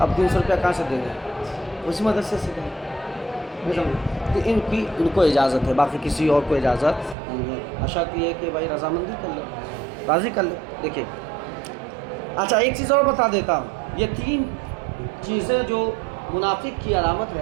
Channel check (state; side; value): drops out; left; at 7.2 s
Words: اب 300 روپیہ کہاں سے دیں گے؟ اسی مدرسے سے دیں گے۔ تو ان کو اجازت ہے، باقی کسی اور کو اجازت نہیں ہے۔ شرط یہ ہے کہ بھائی رضامندی کر لے، راضی کر لے۔ دیکھیں اچھا ایک چیز اور بتا دیتا ہوں، یہ 3 چیزیں جو منافق کی علامت